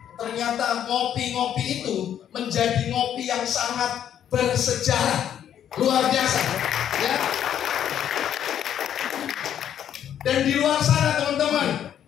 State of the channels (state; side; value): quieter; right; 9.9 dB